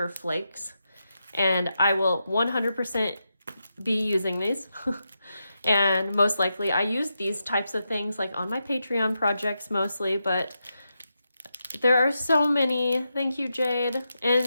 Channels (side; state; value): both; inverted; correlation -0.87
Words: flakes, and I will 100% be using these. And most likely I use these types of things like on my Patreon projects mostly, but there are so many. Thank you, Jade.